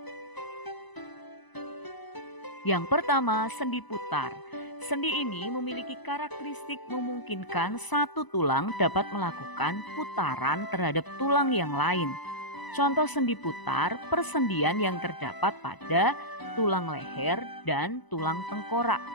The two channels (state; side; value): late; right; 1.0 ms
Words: Yang pertama, sendi putar. Sendi ini memiliki karakteristik memungkinkan satu tulang dapat melakukan putaran terhadap tulang yang lain. Contoh sendi putar, persendian yang terdapat pada tulang leher dan tulang tengkorak.